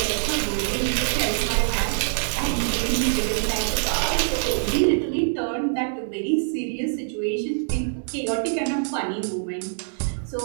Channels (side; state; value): left; silent; digital silence